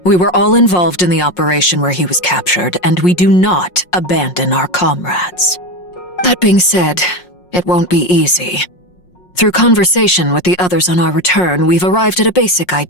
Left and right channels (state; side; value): late; right; 5.5 ms